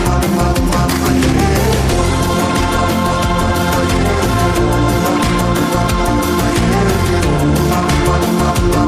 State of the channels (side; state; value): both; identical; correlation 1.00